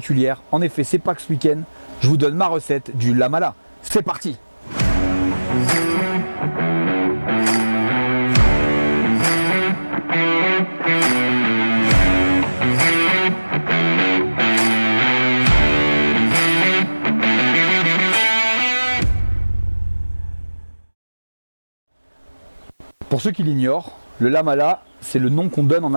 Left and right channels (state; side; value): inverted; both; correlation -1.00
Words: En effet, c'est Pâques ce week-end. Je vous donne ma recette du lamala. C'est parti! Pour ceux qui l'ignorent, le lamala, c'est le nom qu'on donne en